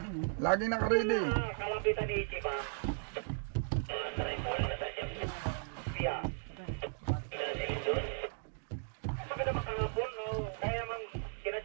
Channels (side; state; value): left; silent; digital silence